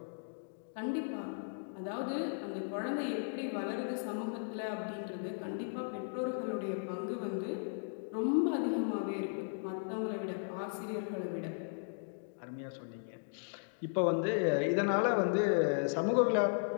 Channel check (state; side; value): silent; right; digital silence